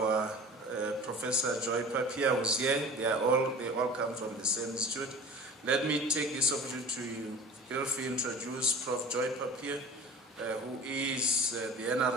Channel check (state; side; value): normal; both; correlation 0.40